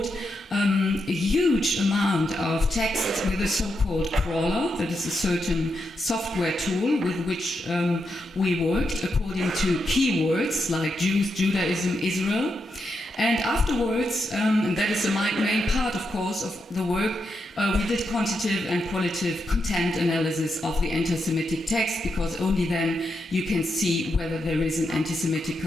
a huge amount of text with a so-called crawler, that is a certain software tool with which we worked according to keywords like Jews, Judaism, Israel. And afterwards, and that is the main part, of course, of the work, we did quantitative and qualitative content analysis of the anti-Semitic text, because only then you can see whether there is an anti-Semitic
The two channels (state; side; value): normal; both; correlation 0.84